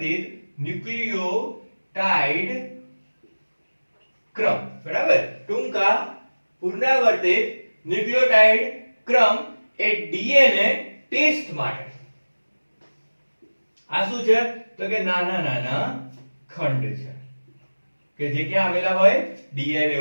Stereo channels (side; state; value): both; inverted; correlation -1.00